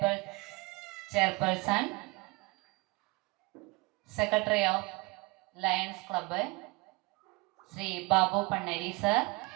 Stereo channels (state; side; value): quieter; left; 25.5 dB